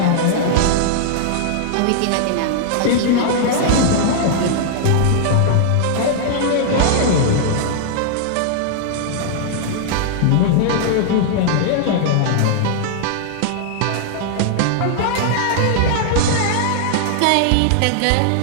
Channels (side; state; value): both; different; correlation -0.01